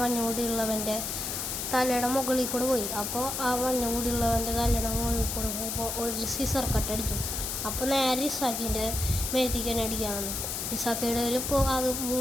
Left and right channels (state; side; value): noise; left; hiss, 3 dB below the sound